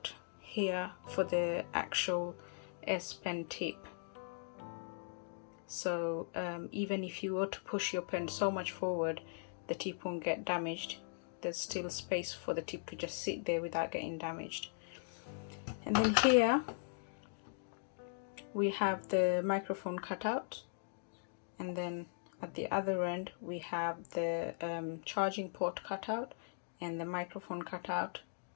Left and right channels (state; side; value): silent; right; digital silence